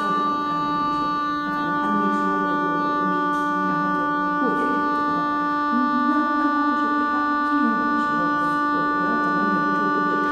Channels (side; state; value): both; identical; correlation 1.00